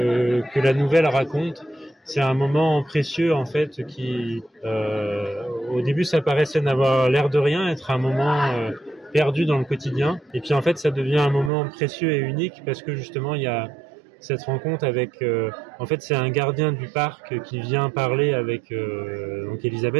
la nouvelle raconte. C'est un moment précieux en fait qui au début ça paraissait n'avoir l'air de rien, être un moment perdu dans le quotidien, et puis en fait ça devient un moment précieux et unique parce que justement il y a cette rencontre avec en fait c'est un gardien du parc qui vient parler avec donc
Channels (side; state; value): left; drops out; at 11.5 s